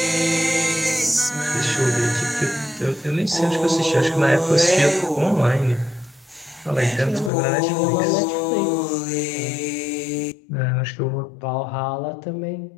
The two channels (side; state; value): right; drops out; at 7.3 s